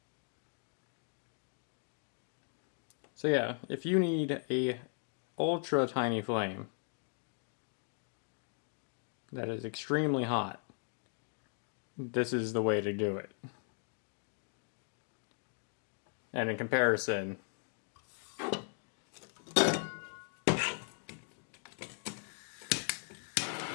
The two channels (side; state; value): right; silent; 52 dB below the other